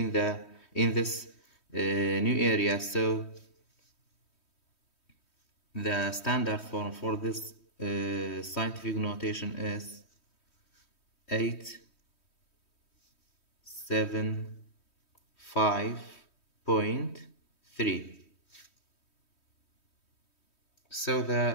this new area, so the standard form for this scientific notation is 875.3. So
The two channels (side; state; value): right; late; 3.1 ms